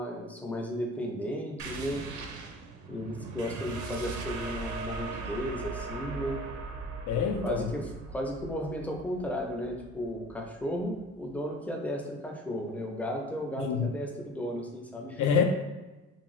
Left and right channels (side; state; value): both; normal; correlation 0.43